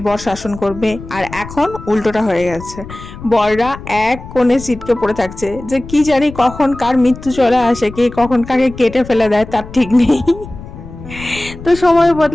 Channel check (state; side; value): noise; left; rumble, 14 dB below the sound